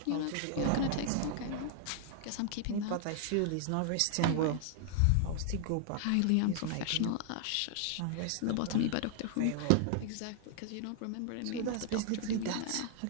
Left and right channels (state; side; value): different; both; correlation 0.00